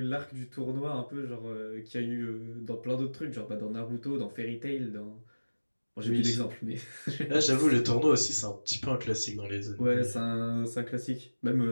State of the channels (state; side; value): inverted; both; correlation -1.00